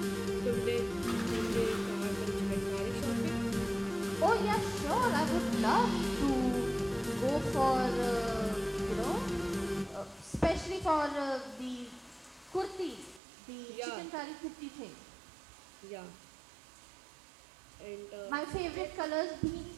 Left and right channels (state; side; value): drops out; left; at 13.2 s